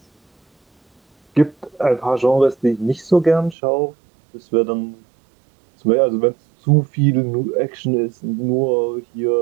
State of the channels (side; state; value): left; drops out; at 3.6 s